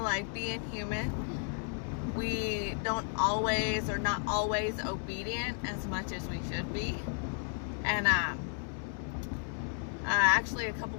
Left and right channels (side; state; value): right; silent; 55 dB below the other